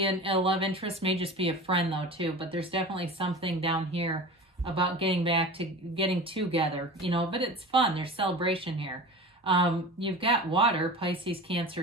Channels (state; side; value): normal; both; correlation 0.33